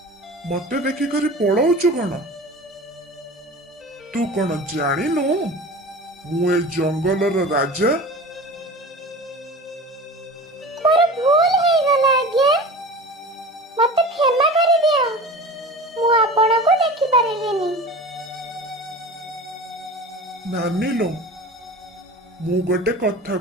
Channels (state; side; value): normal; both; correlation 0.35